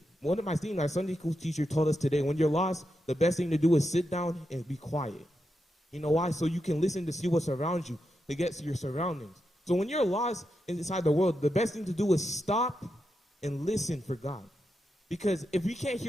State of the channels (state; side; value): normal; both; correlation 0.86